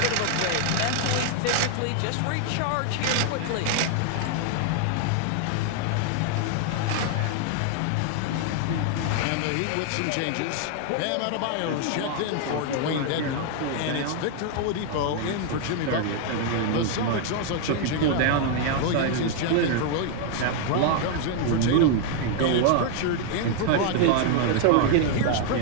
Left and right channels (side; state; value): both; different; correlation 0.00